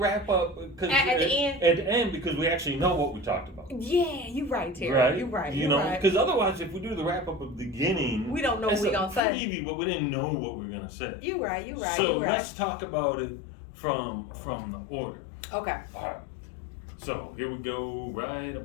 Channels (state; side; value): drops out; right; at 9.2 s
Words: up because at the end. At the end, because we actually know what we talked about. Yeah, you're right, Terry. Right? You're right. You know, because otherwise, if we do the wrap up at the beginning, we don't know what we're gonna say. Preview, but we didn't know what we are gonna say. You're right. You're right. So let's talk about it from the order. Okay. All right. So here we go. Right